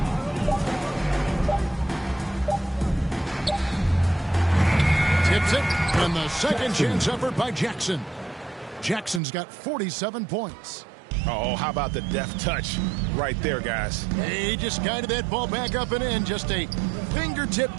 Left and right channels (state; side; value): drops out; left; at 9.2 s